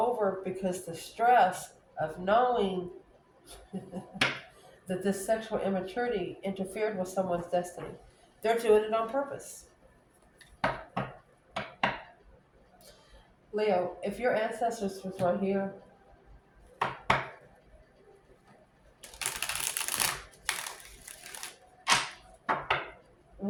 because the stress of knowing that this sexual immaturity interfered with someone's destiny. They're doing it on purpose. Leo, if your ancestors was right here,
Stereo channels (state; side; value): identical; both; correlation 1.00